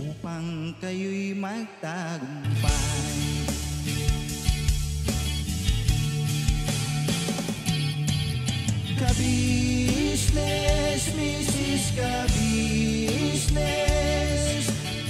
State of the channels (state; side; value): identical; both; correlation 1.00